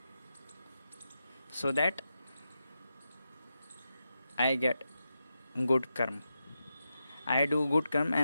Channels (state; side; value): inverted; both; correlation -0.88